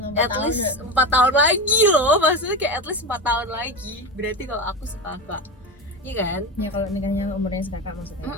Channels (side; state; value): both; normal; correlation 0.22